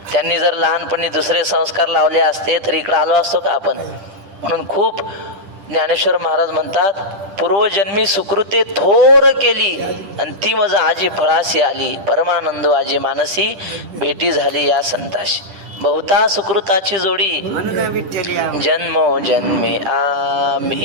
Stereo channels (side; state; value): left; late; 10 ms